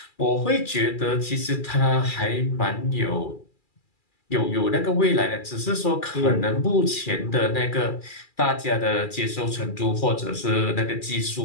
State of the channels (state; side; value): late; right; 2.3 ms